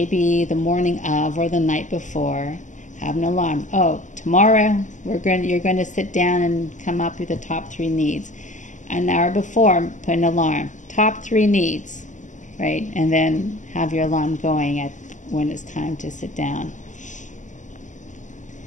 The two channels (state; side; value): late; right; 0.36 ms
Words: the morning of or the night before, have an alarm. Oh, tomorrow you're going to sit down and come up with the top 3 needs. An hour before, put an alarm. Top 3 needs, right? And then have your alarm going at when it's time to sit down.